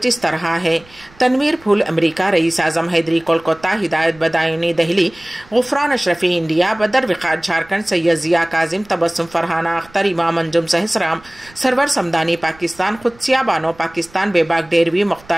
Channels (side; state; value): right; noise; rumble, 26 dB below the sound